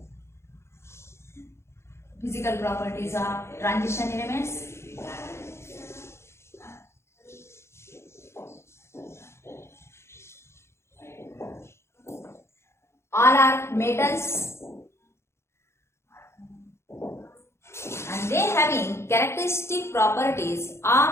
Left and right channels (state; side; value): late; right; 0.13 ms